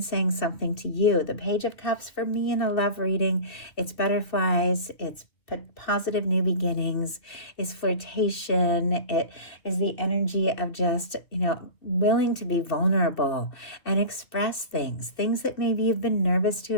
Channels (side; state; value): right; late; 2.5 ms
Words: saying something to you. The Page of Cups for me in a love reading, it's butterflies, it's positive new beginnings, is flirtation. It is the energy of just, willing to be vulnerable and express things that maybe you've been nervous to